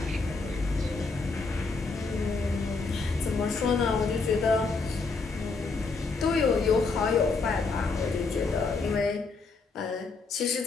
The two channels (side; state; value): right; quieter; 4.2 dB